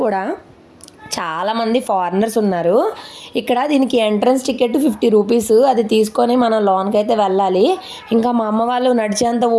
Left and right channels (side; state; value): both; identical; correlation 1.00